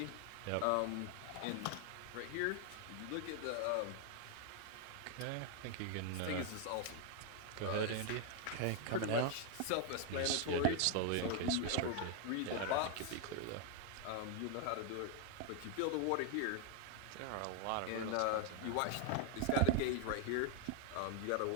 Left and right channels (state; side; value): different; both; correlation 0.00